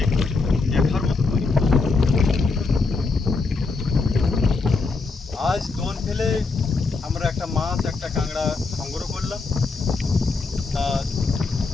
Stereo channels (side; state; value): right; quieter; 4.0 dB